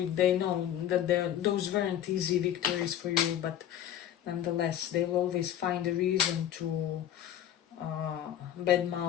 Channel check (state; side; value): quieter; right; 10.9 dB